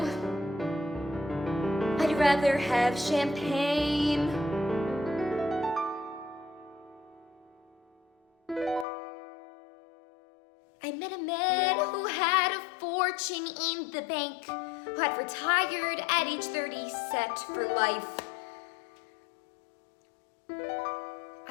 I'd rather have champagne. I met a man who had a fortune in the bank, who had retired at age 30, set for life.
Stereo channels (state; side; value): drops out; right; at 8.8 s